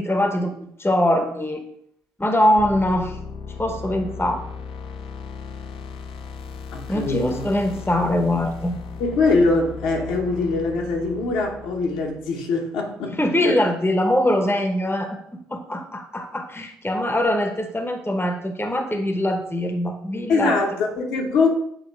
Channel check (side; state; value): both; normal; correlation 0.78